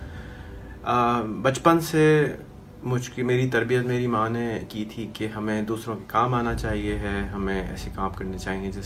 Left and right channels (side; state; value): both; identical; correlation 1.00